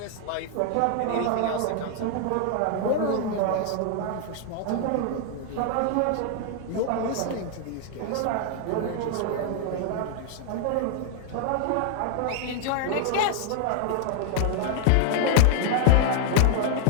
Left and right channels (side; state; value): both; different; correlation 0.00